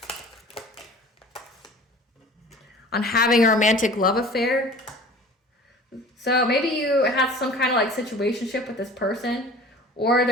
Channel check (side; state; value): both; normal; correlation 0.44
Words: on having a romantic love affair. So maybe you have some kind of like situationship with this person, or